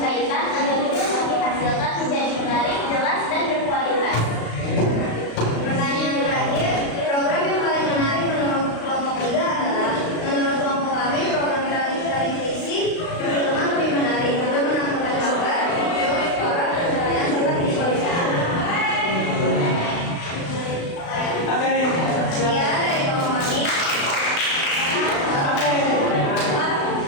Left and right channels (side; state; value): right; late; 36 ms